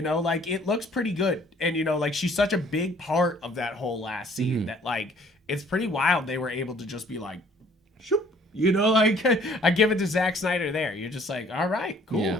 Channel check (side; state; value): both; normal; correlation 0.58